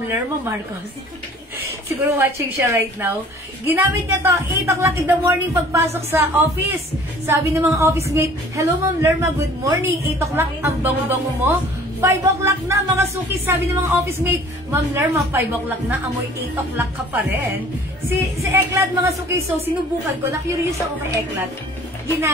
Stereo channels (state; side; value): normal; both; correlation 0.51